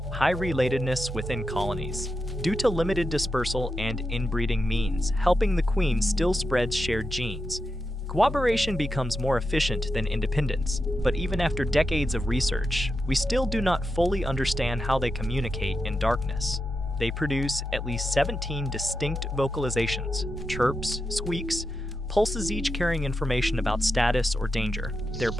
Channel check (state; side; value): normal; both; correlation 0.88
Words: High relatedness within colonies. Due to limited dispersal and inbreeding means, helping the queen still spreads shared genes. Cooperation becomes more efficient than independence, but even after decades of research, we still do not fully understand how they communicate in darkness. They produce at least 17 distinct vocalizations, chirps, squeaks, pulses, each carrying information about status or danger. Their